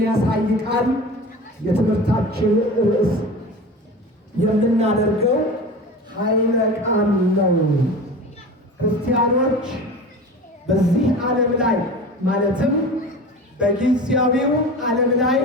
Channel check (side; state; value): both; normal; correlation 0.34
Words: ቃል የትምህርታችን ርዕስ የምናደርገው ኃይለ ቃል ነው። ክርስቲያኖች በዚህ ዓለም ላይ ማለትም በጊዜያዊው ዓለም ላይ